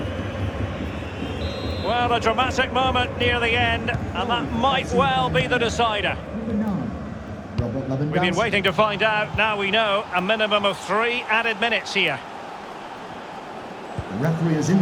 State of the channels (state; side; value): identical; both; correlation 1.00